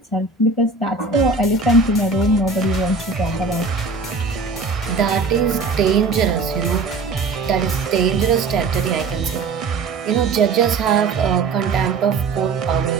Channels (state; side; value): quieter; left; 4.1 dB